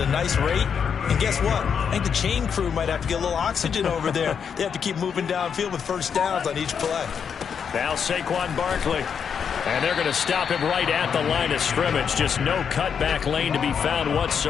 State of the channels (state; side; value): quieter; right; 7.0 dB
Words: nice rate. And guess what? I think the chain crew might have to get a little oxygen over there. They have to keep moving downfield with first downs on each play. Now Saquon Barkley. And they're going to stop him right at the line of scrimmage. Just no cutback lane to be found